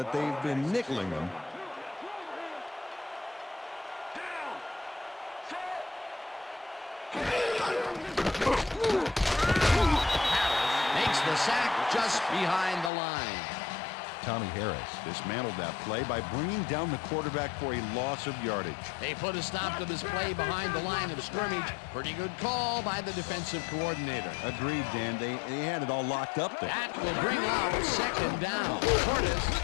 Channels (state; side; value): drops out; right; at 12.9 s